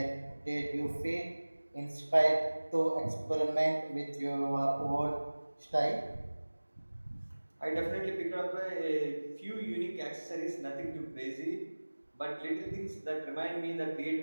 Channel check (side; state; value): both; inverted; correlation -1.00